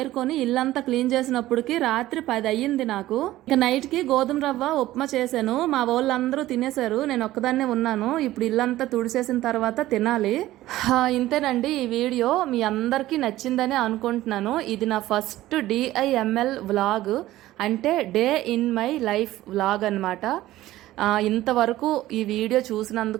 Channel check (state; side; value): quieter; left; 15.6 dB